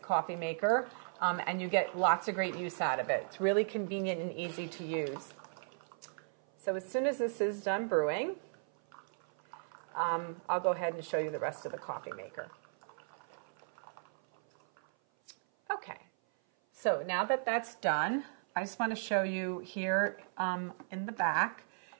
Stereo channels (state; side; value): silent; left; 54 dB below the other